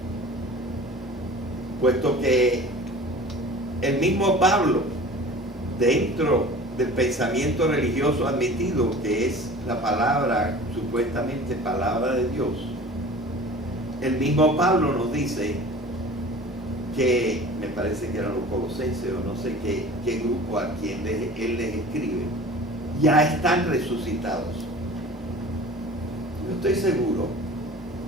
puesto que el mismo Pablo, dentro del pensamiento religioso admitido, que es la palabra, supuestamente palabra de Dios, el mismo Pablo nos dice que, me parece que eran los colosenses o no sé qué grupo a quien él les escribe, ya están resucitados. Yo estoy seguro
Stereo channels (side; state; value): both; normal; correlation 0.41